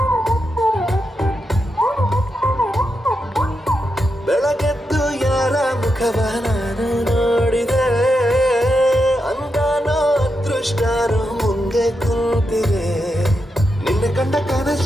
ಬೆಳಗೆದ್ದು ಯಾರ ಮುಖವ ನಾನು ನೋಡಿದೆ, ಅಂದಾನೋ ಅದೃಷ್ಟನೋ ಮುಂದೆ ಕೂತಿದೆ. ನಿನ್ನ ಕಂಡ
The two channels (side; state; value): both; normal; correlation 0.86